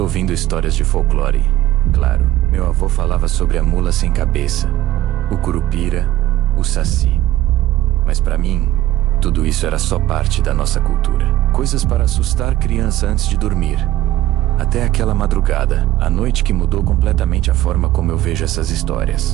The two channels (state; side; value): quieter; left; 14.5 dB